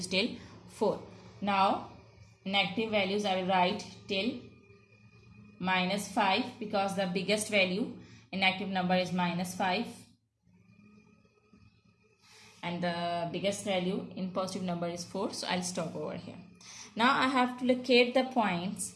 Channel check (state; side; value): identical; both; correlation 1.00